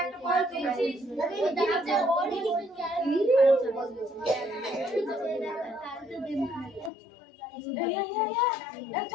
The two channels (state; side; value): drops out; right; at 6.9 s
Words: একটা বল দিয়েছিস